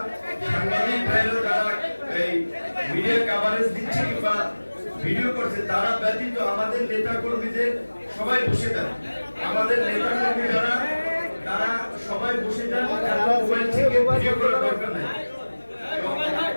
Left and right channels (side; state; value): both; inverted; correlation -1.00